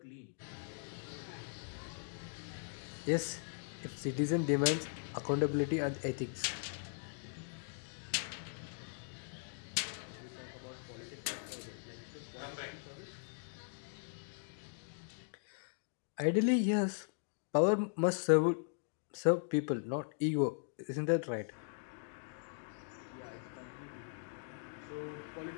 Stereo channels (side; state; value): right; silent; digital silence